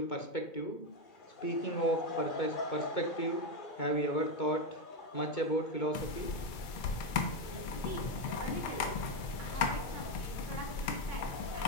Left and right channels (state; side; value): late; right; 2.5 ms